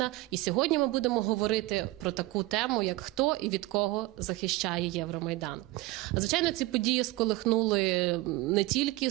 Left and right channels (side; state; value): left; quieter; 19.5 dB